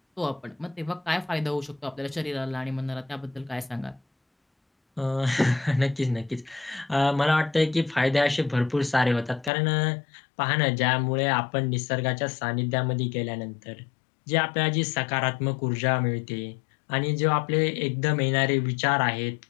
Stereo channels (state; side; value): drops out; right; at 9.5 s